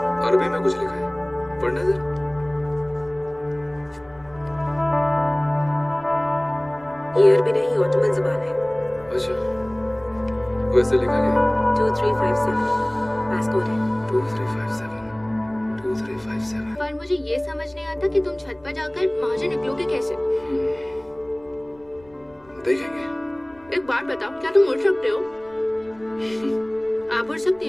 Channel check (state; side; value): noise; left; rumble, 29 dB below the sound